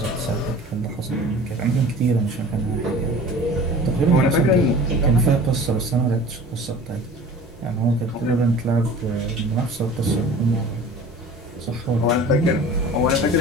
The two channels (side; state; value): both; normal; correlation 0.42